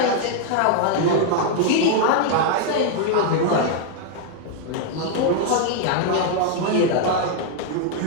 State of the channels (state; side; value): different; both; correlation 0.00